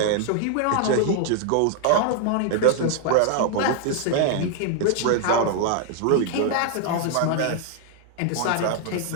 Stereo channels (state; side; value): different; both; correlation 0.00